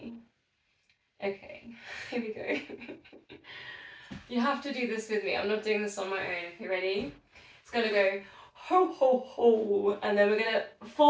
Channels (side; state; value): both; identical; correlation 1.00